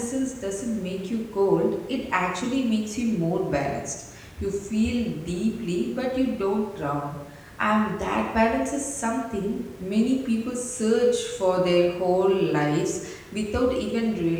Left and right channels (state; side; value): identical; both; correlation 1.00